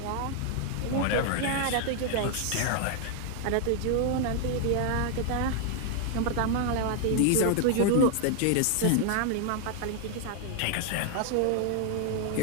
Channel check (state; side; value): different; both; correlation 0.00